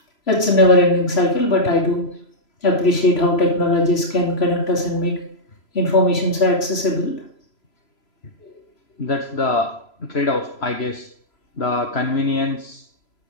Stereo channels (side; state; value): right; late; 3.0 ms